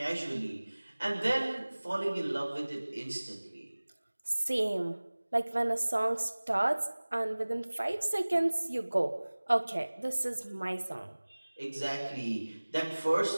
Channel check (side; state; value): both; inverted; correlation -1.00